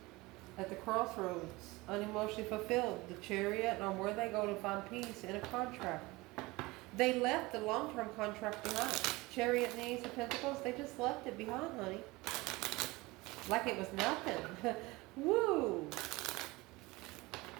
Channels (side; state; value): left; quieter; 22.0 dB